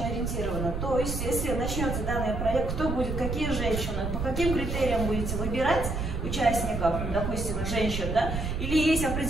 Ориентировано. То есть, если начнется данный проект, кто будет, какие женщины, по каким критериям будете выбирать участников, допустим, женщин, да? Или есть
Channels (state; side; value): noise; right; rumble, 3 dB below the sound